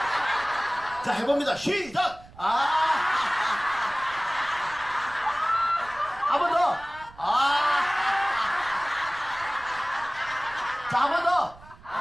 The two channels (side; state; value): right; noise; rumble, 22 dB below the sound